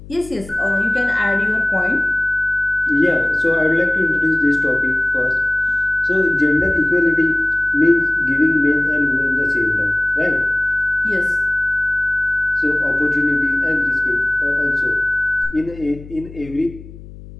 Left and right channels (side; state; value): left; noise; hum, 17 dB below the sound